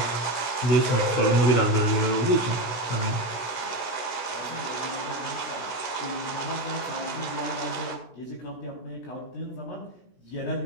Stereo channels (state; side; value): late; right; 16 ms